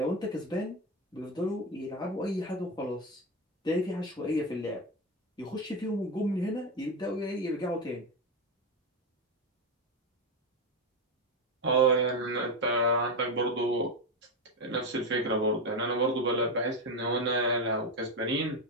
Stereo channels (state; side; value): normal; both; correlation 0.12